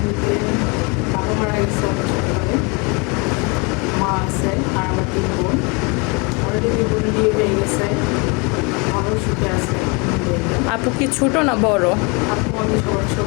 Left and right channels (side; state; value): right; quieter; 30.4 dB